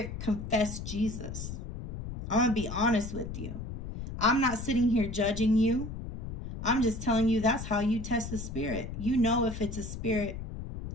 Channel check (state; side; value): noise; left; rumble, 8 dB below the sound